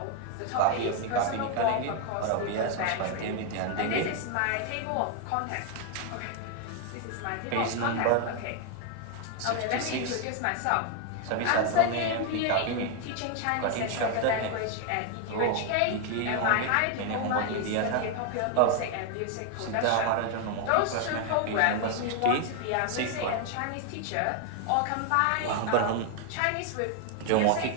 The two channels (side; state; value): both; different; correlation 0.00